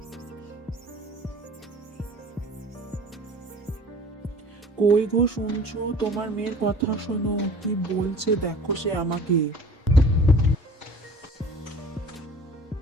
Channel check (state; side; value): normal; both; correlation 0.46